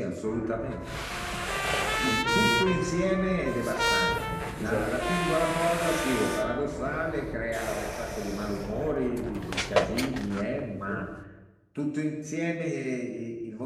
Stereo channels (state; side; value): identical; both; correlation 1.00